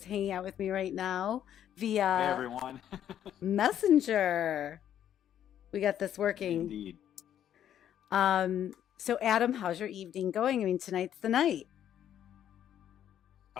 hanging out with me right now Hey via everyone. Messenger. We got this working. Indeed. So Adam, how's your evening going? I mean, tonight's the night.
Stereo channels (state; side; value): quieter; right; 10.4 dB